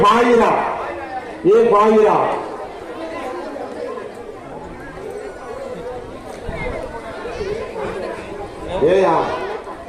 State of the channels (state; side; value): identical; both; correlation 1.00